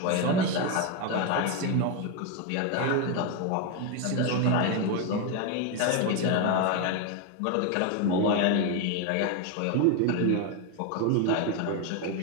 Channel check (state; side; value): different; both; correlation 0.02